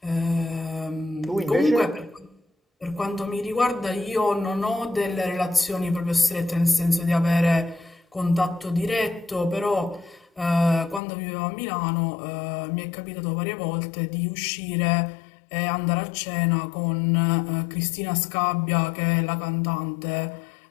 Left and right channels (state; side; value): drops out; right; at 11.0 s